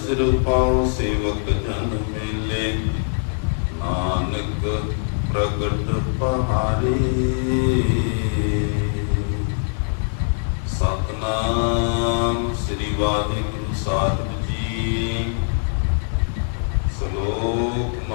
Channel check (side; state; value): right; silent; 64 dB below the other